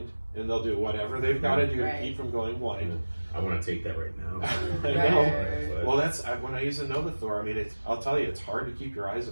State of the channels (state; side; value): inverted; both; correlation -1.00